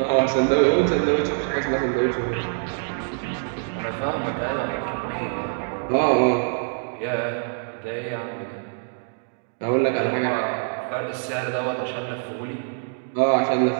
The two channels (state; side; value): silent; left; digital silence